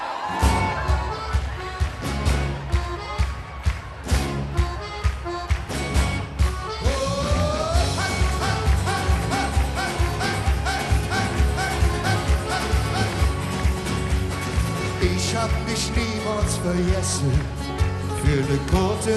Ich hab dich niemals vergessen. Für ne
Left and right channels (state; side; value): identical; both; correlation 1.00